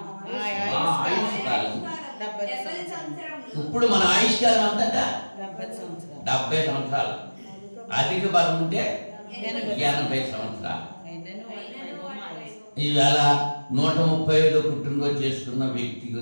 ఇప్పుడు మన ఆయుష్కాలం అంతటా 70 సంవత్సరాలు. అధిక బలం ఉంటే 80 సంవత్సరాలు. ఈవేళ 135 పుట్టినరోజు చేసుకున్న వ్యక్తి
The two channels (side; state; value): both; inverted; correlation -1.00